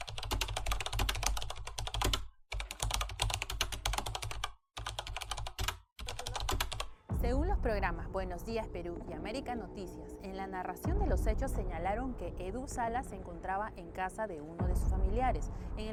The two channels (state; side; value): identical; both; correlation 1.00